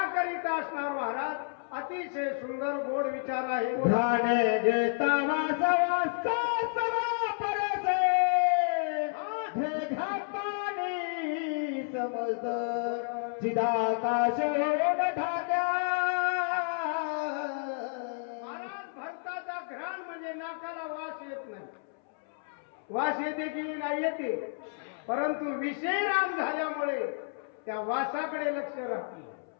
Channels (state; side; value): silent; right; 57 dB below the other